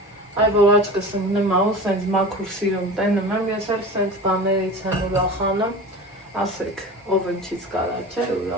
Այ որ աչկս ընկնեմ ահու սենց մաքուր սիրում տենում եմ, ես էլ սենց բաներից եմ ուրախանում, ասեք, ով ընչից կարա չէ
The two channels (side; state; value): both; normal; correlation 0.34